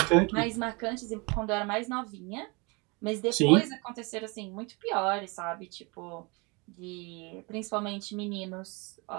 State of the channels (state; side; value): quieter; left; 28.7 dB